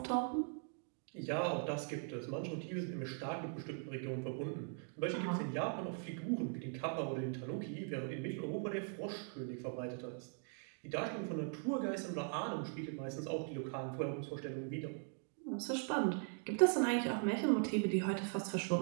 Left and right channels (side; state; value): left; silent; 51 dB below the other